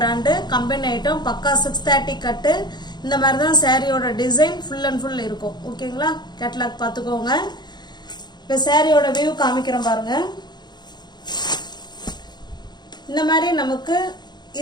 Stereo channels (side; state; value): right; late; 0.21 ms